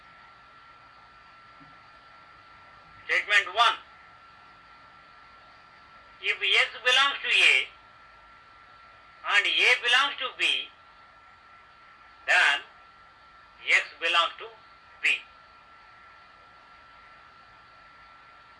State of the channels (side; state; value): both; identical; correlation 1.00